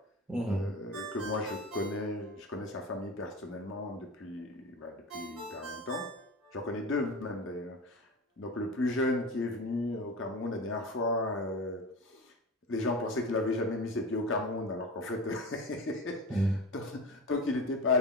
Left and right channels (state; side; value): normal; both; correlation 0.29